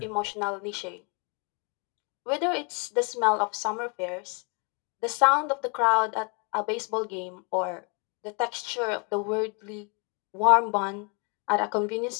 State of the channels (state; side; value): quieter; right; 35.2 dB